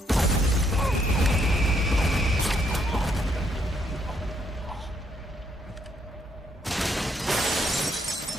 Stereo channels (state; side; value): normal; both; correlation 0.73